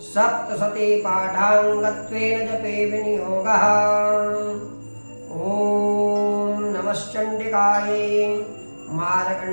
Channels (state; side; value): inverted; both; correlation -1.00